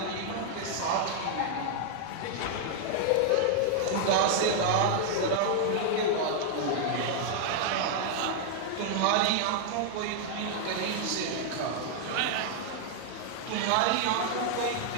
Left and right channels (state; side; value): different; both; correlation 0.00